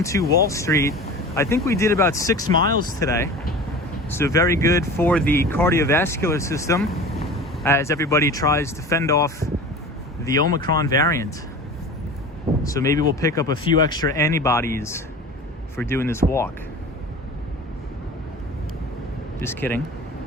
to Wall Street. I think we did about 6 miles today. So very good for the cardiovascular system as everybody tries to fend off the Omicron variant. So maybe we'll pick up a few extra antibodies for doing this walk. Just kidding.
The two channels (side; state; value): both; normal; correlation 0.36